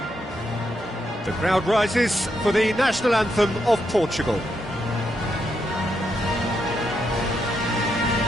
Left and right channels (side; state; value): both; normal; correlation 0.81